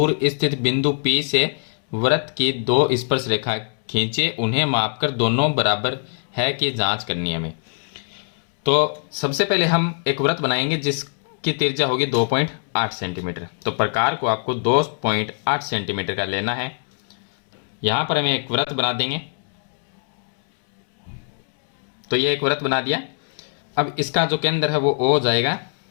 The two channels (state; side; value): silent; right; digital silence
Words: स्थित बिंदु P से वृत्त की दो स्पर्श रेखा खींचे, उन्हें मापकर दोनों बराबर है कि जांच करनी है हमें। तो सबसे पहले हम एक वृत्त बनाएंगे जिसकी त्रिज्या होगी 2.8 सेंटीमीटर। तो प्रकार को आपको 2.8 सेंटीमीटर का लेना है। यहाँ पर हमें एक वृत्त बना देंगे। तो ये एक वृत्त बना दिया। अब इसका जो केंद्र है वो O जाएगा